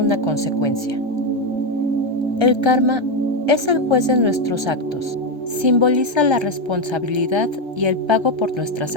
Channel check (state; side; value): late; left; 1.3 ms